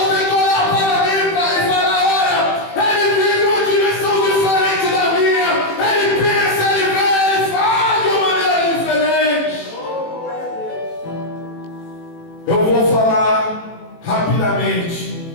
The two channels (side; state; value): right; late; 18 ms